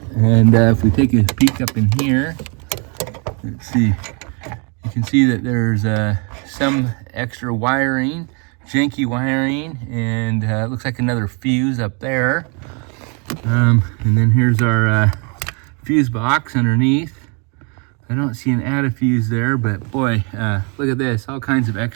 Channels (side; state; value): left; quieter; 35.0 dB